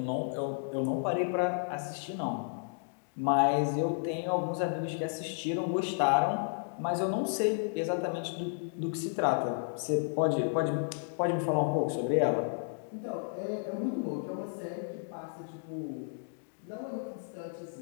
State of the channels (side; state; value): right; silent; digital silence